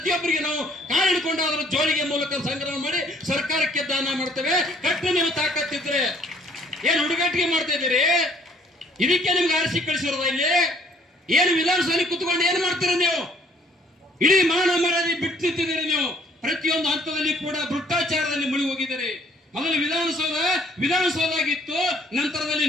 ನಾವು ಕಾಳು ಹಿಡ್ಕೊಂಡು ಅದರ ಜೋಳಿಗೆ ಮೂಲಕ ಸಂಗ್ರಹ ಮಾಡಿ ಸರ್ಕಾರಕ್ಕೆ ದಾನ ಮಾಡ್ತೇವೆ. ಕಟ್ಟು ನೀವು ತಾಕತ್ತಿದ್ರೆ ಏನ್ ಹುಡುಗಾಟಿಗೆ ಮಾಡ್ತಾ ಇದ್ದೀರಿ? ಇದಕ್ಕೆ ನಿಮ್ಗೆ ಆರಿಸಿ ಕಳಿಸಿರೋದ? ಇಲ್ಲಿ ಏನು ವಿಧಾನಸಭೆ ಕುತ್ಕೊಂಡು ಏನ್ ಮಾಡ್ತೀರ ನೀವು? ಇಡೀ ಮಾನ ಮರ್ಯಾದೆ ಬಿಟ್ಟು ನಿಂತಿದ್ದೀರಿ ನೀವು. ಪ್ರತಿಯೊಂದು ಹಂತದಲ್ಲಿ ಕೂಡ ಭ್ರಷ್ಟಾಚಾರದಲ್ಲಿ ಮುಳುಗಿ ಹೋಗಿದ್ದೀರಿ. ಮೊದಲು ವಿಧಾನಸೌಧ ಆಗಿತ್ತು, ನಂತರದಲ್ಲಿ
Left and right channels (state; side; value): normal; both; correlation 0.61